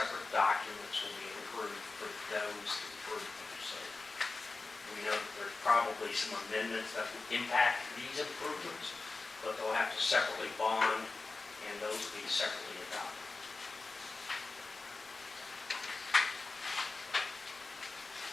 documents will be approved for those improvements. So we know that there's probably some amendments that will impact these improvements, but they'll have to separately bond, and those will be separately adopted.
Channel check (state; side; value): quieter; right; 3.7 dB